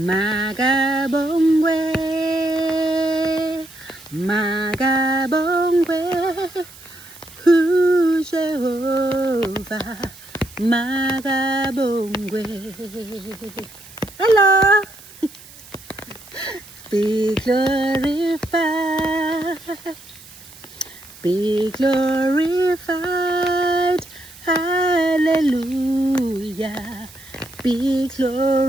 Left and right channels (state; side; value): noise; right; hiss, 20 dB below the sound